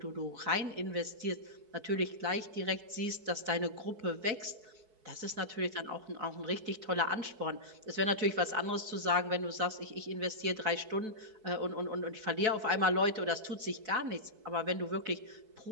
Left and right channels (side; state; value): left; late; 4.6 ms